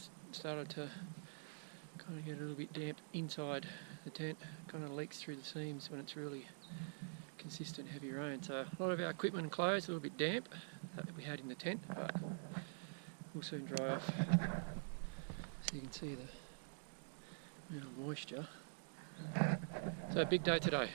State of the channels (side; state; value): left; silent; digital silence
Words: started to kind of get a little bit damp inside the tent. Kind of leaks through the seams when it's really consistent heavy rain. So a lot of our equipment and clothes a little bit damp that we had in the tent, but will soon dry off. So you can see the amount of moisture. So a big day today,